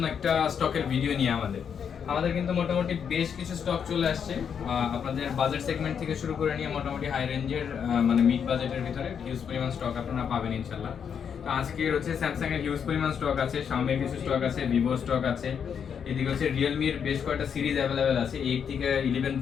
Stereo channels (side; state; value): right; quieter; 7.4 dB